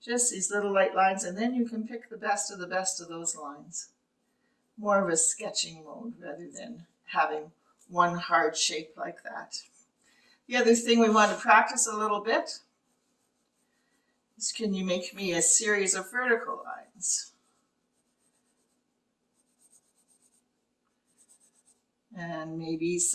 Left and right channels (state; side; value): identical; both; correlation 1.00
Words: Just these little light lines, and then you can pick the best of those lines. More of a sketching mode rather than having one hard shape like that. The other thing we want to practice a little bit is, can you make me a series of vertical lines? And maybe